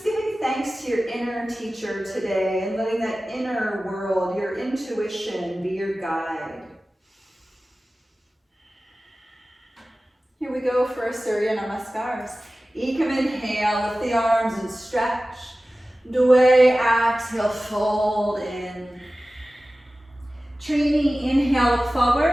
giving thanks to your inner teacher today and letting that inner world, your intuition, be your guide. Here we go for our Surya Namaskars. Ekam inhale, lift the arms and stretch. Dway, exhale, fold in. Trini, inhale, look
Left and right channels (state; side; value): normal; both; correlation 0.96